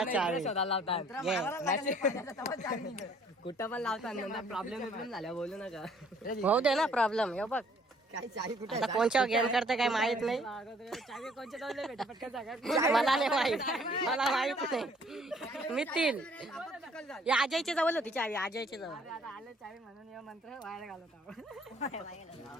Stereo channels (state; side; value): normal; both; correlation 0.60